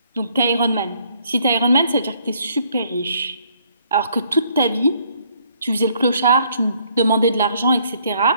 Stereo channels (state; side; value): inverted; both; correlation -0.65